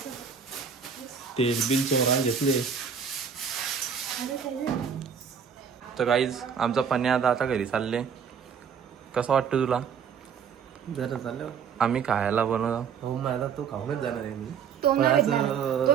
तेल बिल चोरा घेतले. तर गाईज आमचा पन्या आता घरी चालले. कसं वाटतं तुला? जरा चाललं आम्ही खायला बनवतो. हो माझा तो खाऊनच जाणार आहे मी. तो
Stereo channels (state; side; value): quieter; left; 7.0 dB